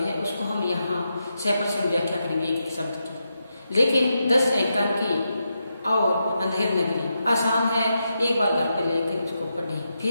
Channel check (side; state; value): both; inverted; correlation -0.85